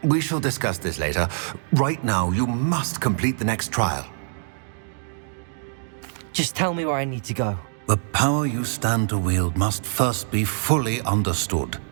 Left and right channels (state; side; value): silent; left; digital silence